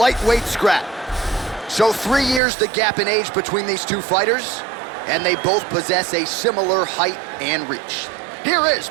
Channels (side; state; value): left; drops out; at 2.4 s